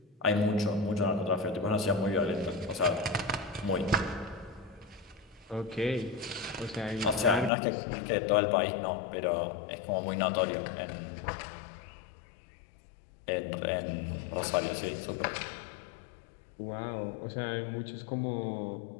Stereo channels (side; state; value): right; drops out; at 7.5 s